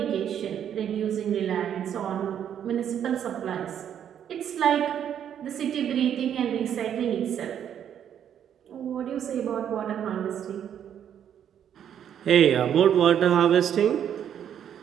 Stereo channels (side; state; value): left; quieter; 9.3 dB